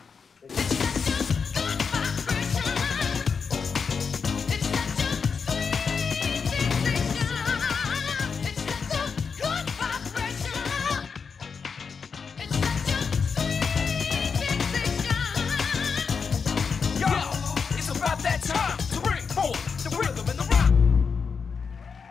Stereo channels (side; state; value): right; quieter; 5.7 dB